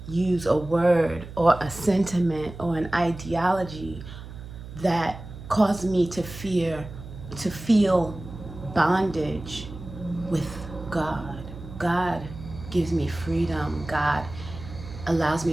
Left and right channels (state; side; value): noise; right; hum, 13 dB below the sound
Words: use a word or a sentiment or an ideology that caused me to feel bondage with God. God gives me freedom. God allows